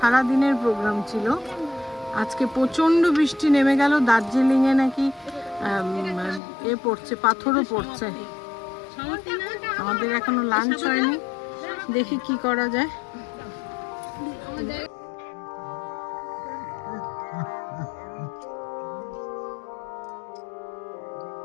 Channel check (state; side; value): drops out; right; at 6.4 s